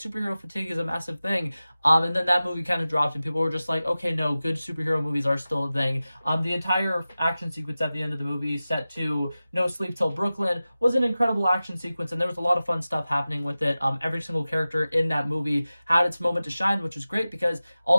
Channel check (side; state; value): both; inverted; correlation -0.96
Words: fatigue is a massive thing, and then that movie kind of dropped and people were just like, okay, no, good superhero movies are still a thing. The entire action sequence at the end of the movie, set to No Sleep Till Brooklyn, was an incredible action sequence, and there was a lot of fun stuff happening with it. Every single character in that movie had its moment to shine, which was great, because